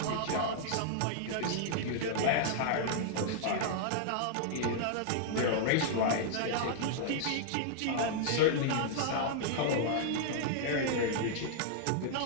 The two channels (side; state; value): both; different; correlation -0.01